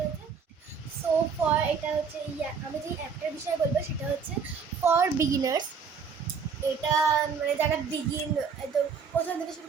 সো ফর এটা হচ্ছে আমি যে অ্যাপটার বিষয়ে বলবো সেটা হচ্ছে ফর বিগিনার্স। এটা মানে যারা একদম প্রথম থেকে শুরু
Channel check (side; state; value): left; quieter; 5.9 dB